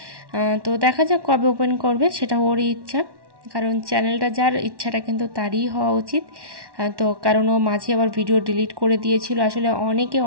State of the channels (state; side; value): late; left; 1.1 ms